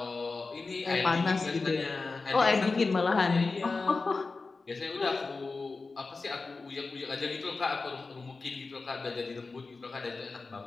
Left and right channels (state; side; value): quieter; right; 3.9 dB